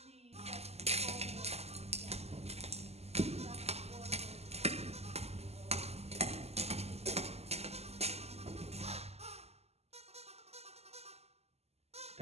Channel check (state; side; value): late; left; 0.30 ms